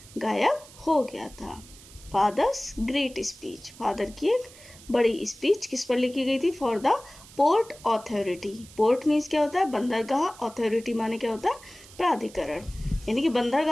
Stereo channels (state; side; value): noise; right; hiss, 21 dB below the sound